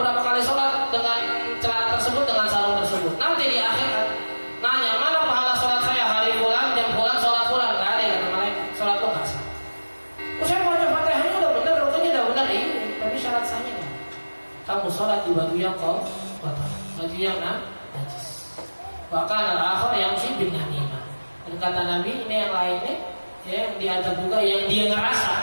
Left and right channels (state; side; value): inverted; both; correlation -1.00